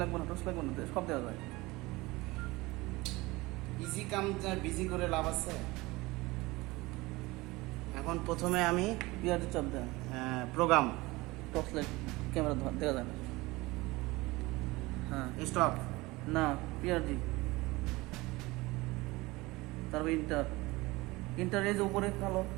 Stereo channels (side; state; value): left; quieter; 21.5 dB